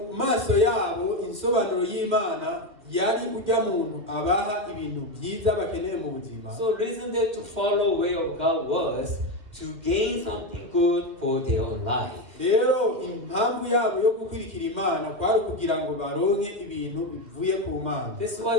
maso yabo insobanuro y'Imana yari ujya muntu abaha ibintu byiza bakeneye mu buzima. So, reason that to follow way of God was to gain something good for their own life. Rero impamvu yabo yo gukurikira Imana kwari kugira ngo baronke ibintu bivuye ku Mana. That's why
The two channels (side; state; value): left; late; 2.1 ms